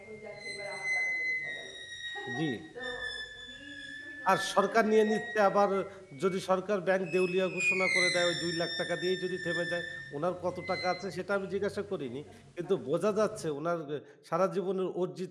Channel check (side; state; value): both; identical; correlation 1.00